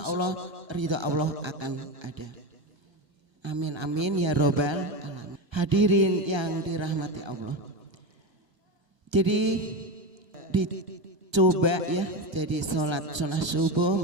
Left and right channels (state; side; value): late; left; 1.2 ms